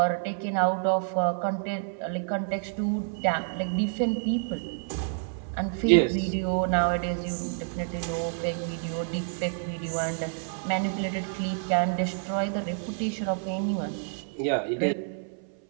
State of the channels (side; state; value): left; silent; 57 dB below the other